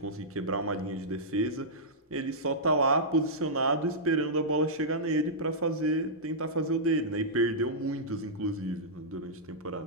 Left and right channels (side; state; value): both; normal; correlation -0.12